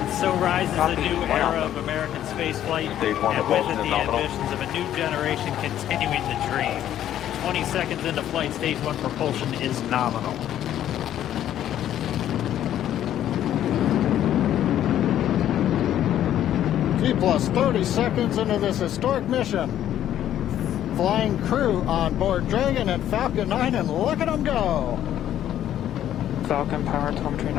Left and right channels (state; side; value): quieter; right; 11.4 dB